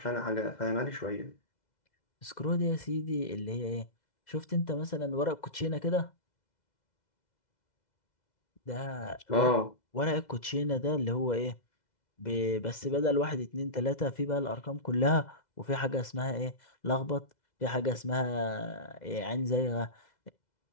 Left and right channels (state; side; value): late; right; 2.0 ms